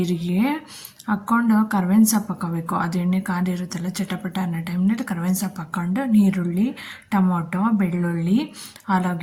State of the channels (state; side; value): identical; both; correlation 1.00